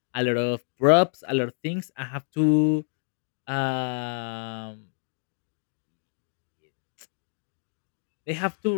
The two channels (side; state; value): right; silent; digital silence